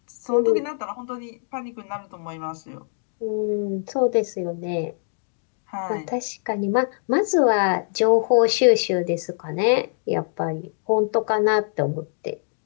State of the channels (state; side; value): silent; right; digital silence